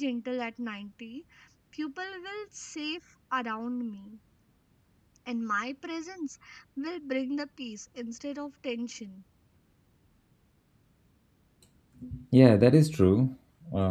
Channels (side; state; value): both; identical; correlation 1.00